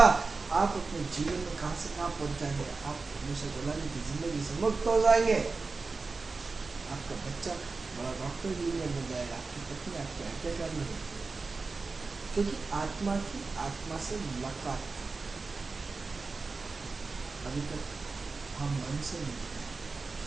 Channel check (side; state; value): left; quieter; 4.1 dB